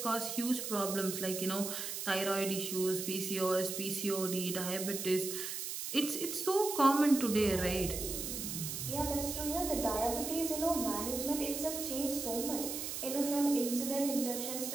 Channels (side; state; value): right; noise; hiss, 5 dB below the sound